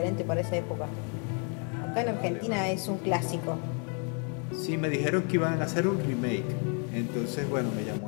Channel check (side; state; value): right; quieter; 39.9 dB